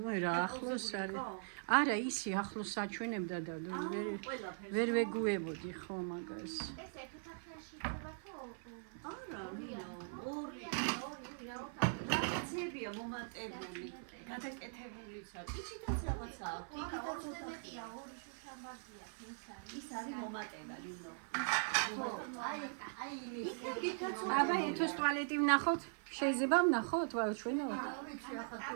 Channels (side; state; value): left; silent; 50 dB below the other